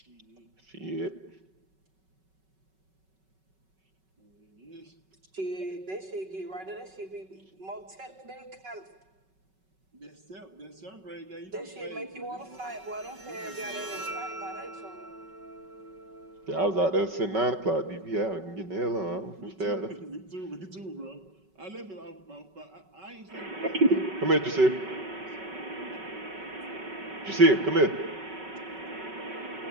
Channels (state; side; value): late; left; 5.3 ms